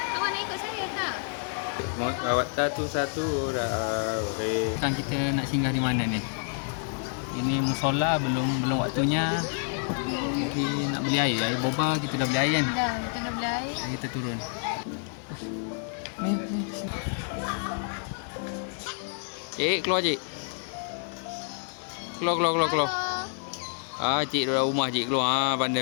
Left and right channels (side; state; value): right; silent; 56 dB below the other